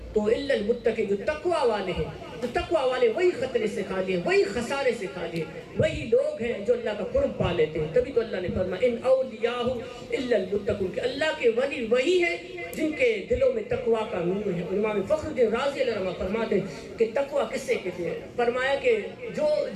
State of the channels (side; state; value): both; identical; correlation 1.00